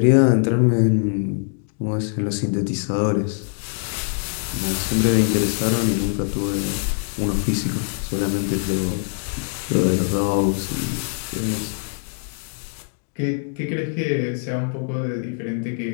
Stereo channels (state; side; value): silent; right; digital silence